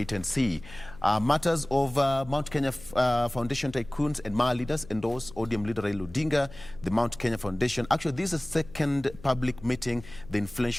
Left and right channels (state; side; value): noise; left; hum, 18 dB below the sound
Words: and see. Matters of Mount Kenya Foundation tycoons and Maa leaders endorse ODM leader Raila Odinga. The Mount Kenya Foundation, actually this is the second public meeting the